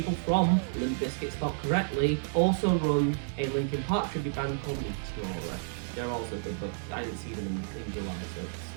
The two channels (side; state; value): left; silent; 57 dB below the other